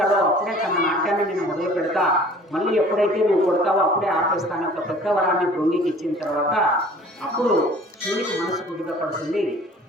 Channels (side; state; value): both; normal; correlation 0.49